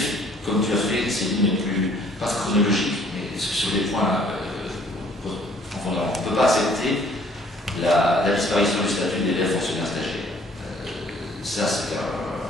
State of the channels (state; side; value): normal; both; correlation 0.58